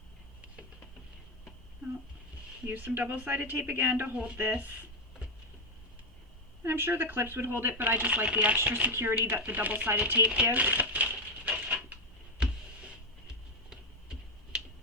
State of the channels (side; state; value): both; normal; correlation 0.07